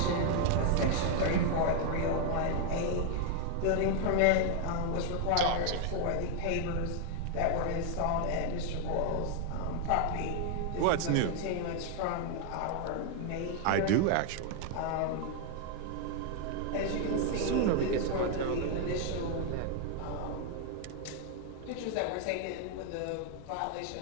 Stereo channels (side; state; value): both; different; correlation 0.00